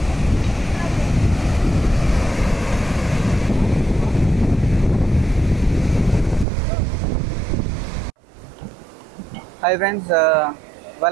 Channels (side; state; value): left; drops out; at 6.5 s